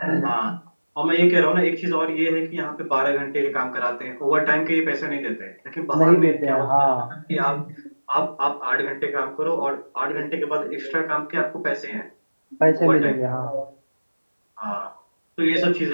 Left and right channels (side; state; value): both; inverted; correlation -1.00